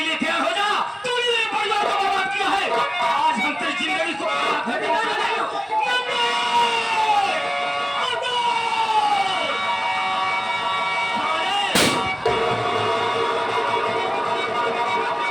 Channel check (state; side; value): identical; both; correlation 1.00